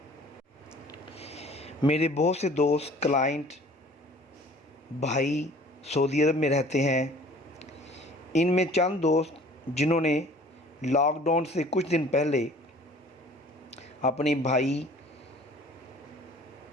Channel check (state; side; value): normal; both; correlation 0.50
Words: میرے بہت سے دوست کلائنٹ بھائی سعودی عرب میں رہتے ہیں۔ ان میں چند دوست جنہوں نے لاک ڈاؤن سے کچھ دن پہلے اپنے بھائی،